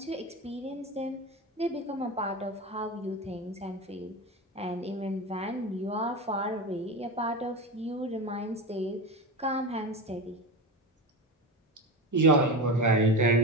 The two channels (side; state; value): both; normal; correlation 0.22